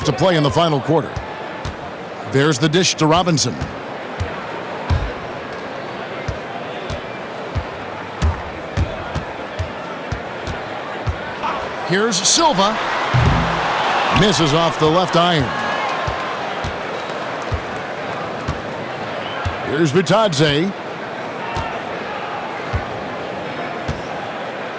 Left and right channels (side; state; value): both; identical; correlation 1.00